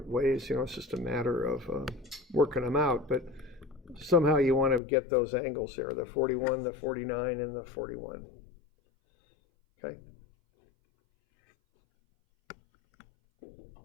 ways, you know, it's just a matter of working them out, but somehow you want to get those angles there, the 41, the 49, and the 41. Okay.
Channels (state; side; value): drops out; right; at 4.8 s